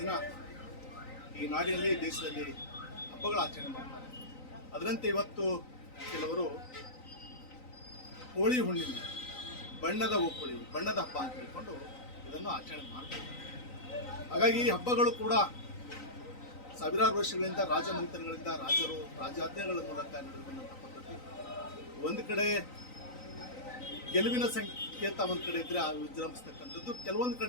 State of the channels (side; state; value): right; late; 3.9 ms